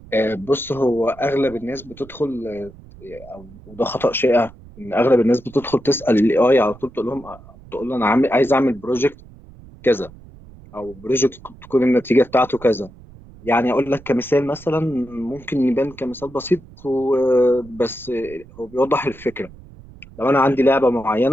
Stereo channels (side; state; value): right; noise; rumble, 21 dB below the sound